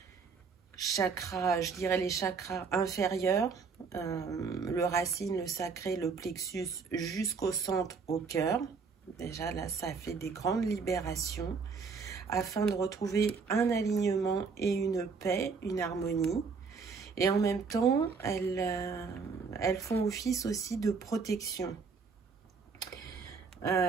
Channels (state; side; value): quieter; left; 5.2 dB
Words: chakra, je dirais les chakras inférieurs, le racine, le sacré, le plexus jusqu'au centre, au cœur. Déjà là, ça fait des grandes libérations afin de retrouver un alignement et une paix, une harmonie. Et en même temps, elles font office aussi de protection.